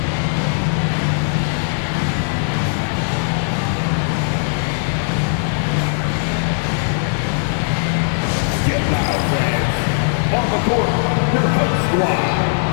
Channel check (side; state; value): right; silent; 66 dB below the other